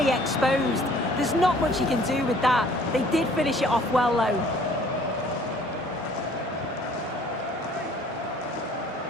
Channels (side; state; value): both; normal; correlation 0.56